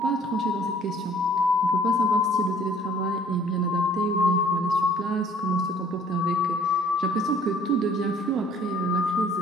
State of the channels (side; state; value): both; normal; correlation 0.56